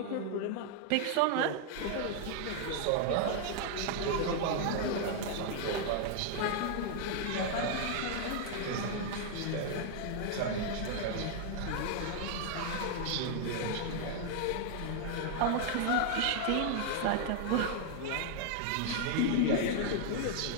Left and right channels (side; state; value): both; different; correlation 0.00